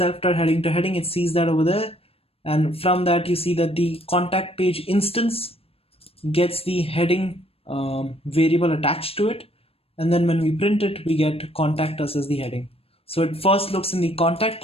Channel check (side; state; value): right; late; 0.28 ms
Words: to heading. It sees that over there. And from that, you see that the contact page instance gets the heading variable attached to it. And then when we print it, we get contact us as the heading. So it first looks in the contact